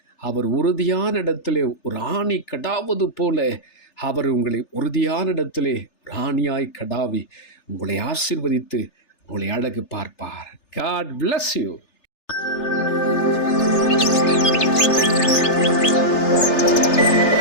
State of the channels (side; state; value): right; late; 3.3 ms